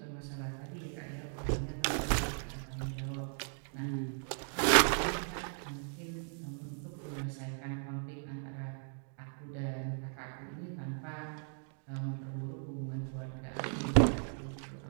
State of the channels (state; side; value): silent; left; 53 dB below the other